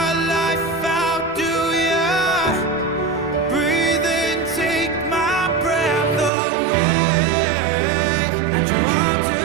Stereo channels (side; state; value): left; drops out; at 6.3 s